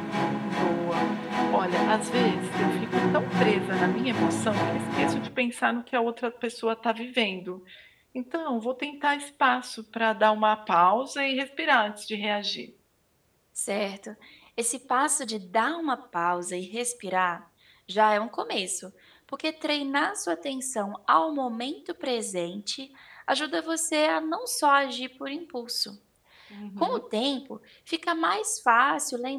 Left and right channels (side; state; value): both; identical; correlation 1.00